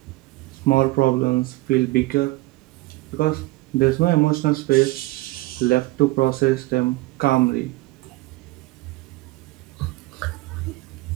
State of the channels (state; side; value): quieter; left; 19.9 dB